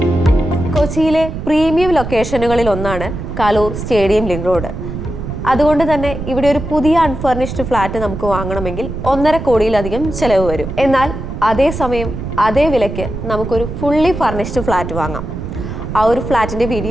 കൊച്ചിയിലെ പ്രീമിയം ലൊക്കേഷനുകളിൽ ഒന്നാണ് കലൂർ സ്റ്റേഡിയം ലിങ്ക് റോഡ്. അതുകൊണ്ട് തന്നെ ഇവിടെ ഒരു പുതിയ അൺഫർണിഷ്ഡ് ഫ്ലാറ്റ് നമുക്ക് വാങ്ങണമെങ്കിൽ 1.5 കോടിയിലധികം ചെലവ് വരും. എന്നാൽ അതേസമയം അതേ വിലയ്ക്ക് നമുക്കൊരു ഫുള്ളി ഫർണിഷ്ഡ് ഫ്ലാറ്റ് വാങ്ങാം. ആ ഒരു ഫ്ലാറ്റിൻ്റെ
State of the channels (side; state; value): right; noise; rumble, 7 dB below the sound